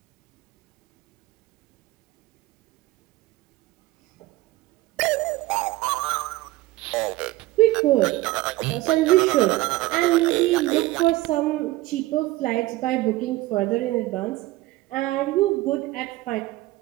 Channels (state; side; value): quieter; left; 18.2 dB